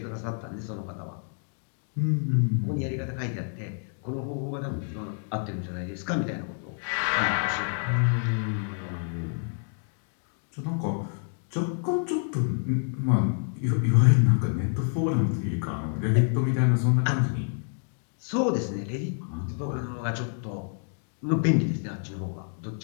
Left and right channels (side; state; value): right; silent; 58 dB below the other